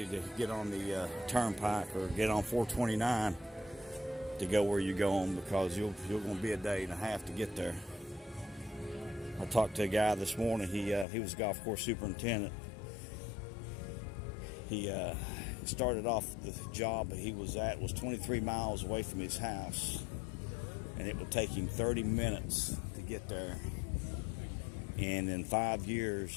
to get on the turnpike or get on 429 to go where you're going, because you're going to be a day and a half to get there. I talked to a guy this morning. He was a golf course superintendent. He started off the job he was at was 23 miles away from his house, and it would take him 30 minutes to get there. And in 5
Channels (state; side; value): drops out; right; at 11.1 s